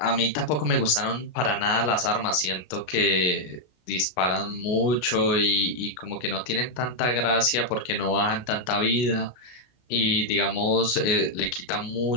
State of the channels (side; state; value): right; late; 33 ms